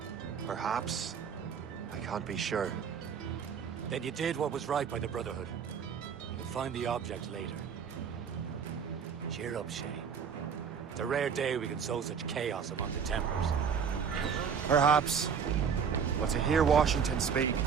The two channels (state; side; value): quieter; left; 6.9 dB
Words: Perhaps. I can't be sure. Then you did what was right by the Brotherhood. You'll find the object later. Cheer up, Shay. It's a rare day we can sow such chaos among the Templars. Perhaps. But to hear Washington speak,